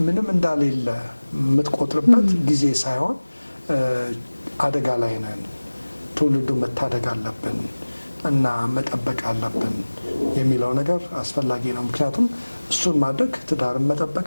ምንም እንዳሌለ የምትቆጥርበት ጊዜ ሳይሆን አደጋ ላይ ነን፣ ትውልዱ መታደግ አለብን እና መጠበቅ አለብን የሚለው ነገር አስፈላጊ ነው። ምክንያቱም እሱን ማድረግ ትዳርን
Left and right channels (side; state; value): both; inverted; correlation -1.00